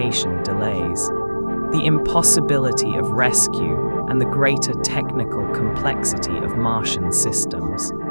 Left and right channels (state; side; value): inverted; both; correlation -1.00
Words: delays, the impossibility of rescue, and the greater technical complexity of Martian systems.